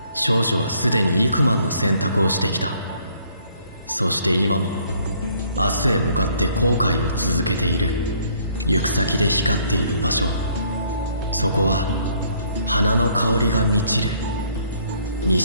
少女はすでに幾万の選択をしてきた。そして今も明日へ向かって後悔を続けている。行く先で光っている場所、そこは花の香りが満ちる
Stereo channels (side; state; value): both; inverted; correlation -0.63